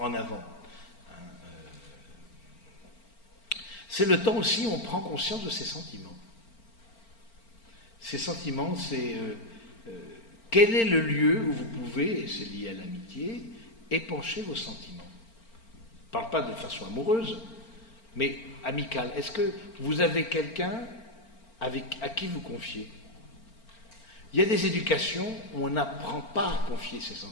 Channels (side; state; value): right; late; 4.4 ms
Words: avant. C'est le temps aussi où on prend conscience de ses sentiments. Ces sentiments, c'est quel est le lieu où vous pouvez, et c'est lié à l'amitié, épancher vos sentiments. Je ne parle pas de façon amoureuse, mais amicale. Est-ce que vous avez quelqu'un à qui vous confiez? Il y a des éducations où on n'apprend pas à confier ses